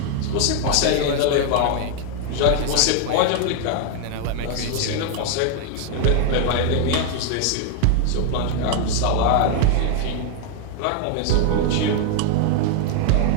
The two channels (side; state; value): both; different; correlation 0.00